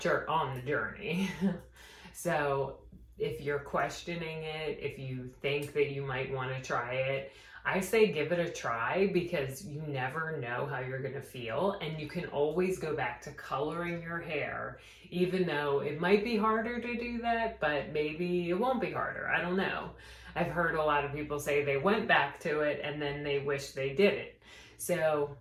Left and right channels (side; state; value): both; identical; correlation 1.00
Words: So if you're questioning it, if you think that you might want to try it, I say give it a try, because you never know how you're going to feel, and you can always go back to coloring your hair, even though it might be harder to do that, but maybe it won't be harder. I don't know. I've heard a lot of people say they went back to it and then they wish they did it. So